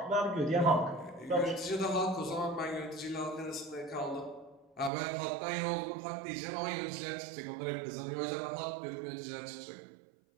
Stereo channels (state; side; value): drops out; left; at 4.9 s